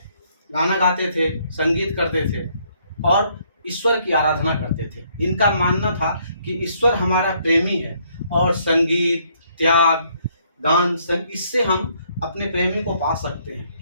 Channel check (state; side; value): inverted; both; correlation -0.68